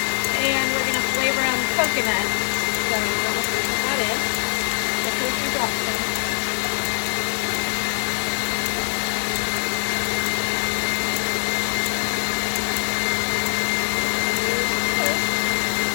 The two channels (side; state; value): right; silent; 64 dB below the other